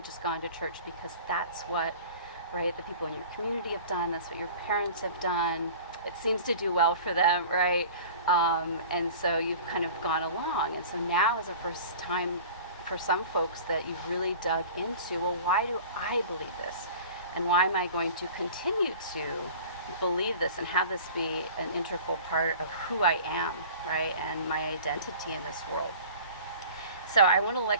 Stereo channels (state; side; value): inverted; both; correlation -0.41